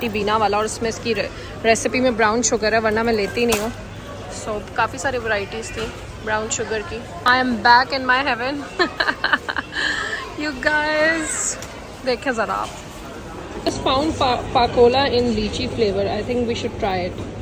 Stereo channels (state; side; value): identical; both; correlation 1.00